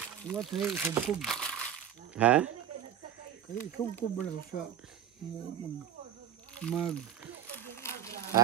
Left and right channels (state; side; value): quieter; left; 9.6 dB